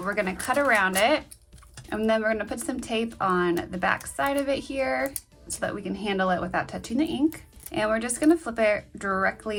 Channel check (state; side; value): identical; both; correlation 1.00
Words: we're gonna cut around it. And then we're gonna put some tape on the back side of it here so that we can handle it without touching the ink. And we're just gonna flip it